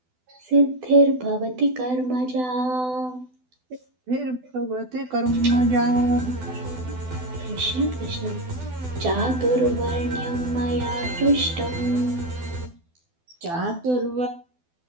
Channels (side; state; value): left; late; 12 ms